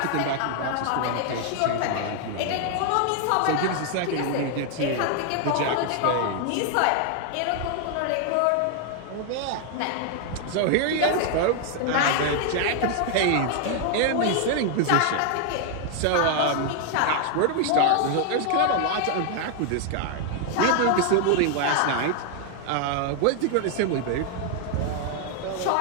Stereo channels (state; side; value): different; both; correlation 0.00